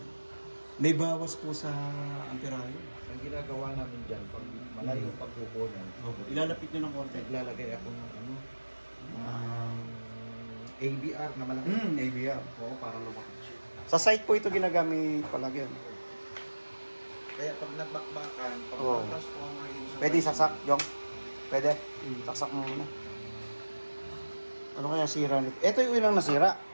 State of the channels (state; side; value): inverted; both; correlation -1.00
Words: May bawas po sa amperayo. Ang ginagawa namin dyan, pag malayo pagkukunan, Opo, ilalapit niyo ng konti. naglalagay ako ng ano, ABR na malaki. ABR. Oo, para lumaki siya. Sa site po ito ginagamit palagi. Kaya pag nagbakbakan, pag Oo. transformer yun sa... Pwede saksak, Jong? Pwede? Saksak mo muna. Ano kaya sira nito? Ito yung ilang nasira.